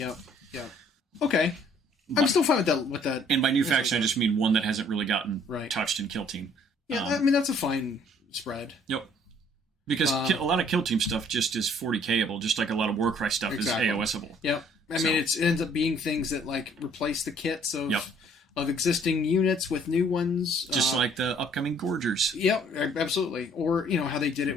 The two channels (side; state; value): both; normal; correlation 0.60